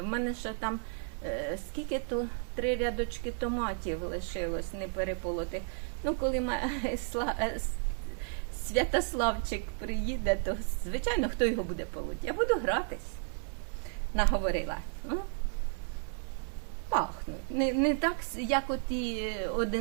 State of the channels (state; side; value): silent; left; 56 dB below the other